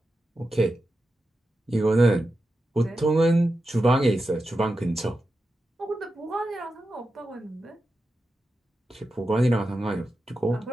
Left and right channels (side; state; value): both; normal; correlation 0.90